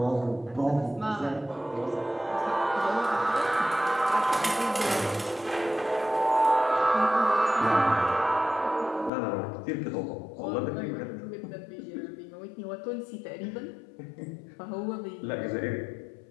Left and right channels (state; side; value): drops out; right; at 9.1 s